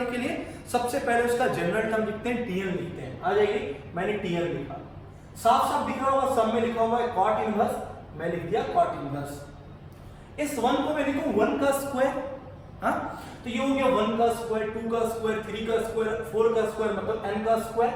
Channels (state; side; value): identical; both; correlation 1.00